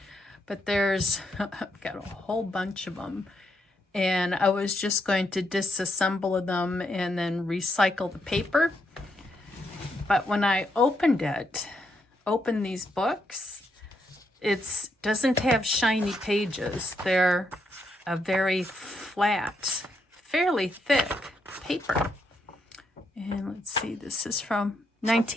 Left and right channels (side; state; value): both; normal; correlation 0.79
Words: But I've got a whole bunch of them. And I was just going to disassemble them and then recycle the paper. But when I opened these books, it doesn't have shiny pages. They're a very flat, fairly thick paper. And let's see, this is from